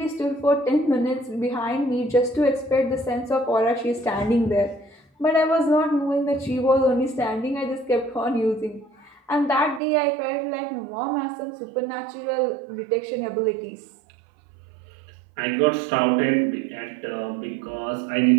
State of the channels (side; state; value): left; drops out; at 9.8 s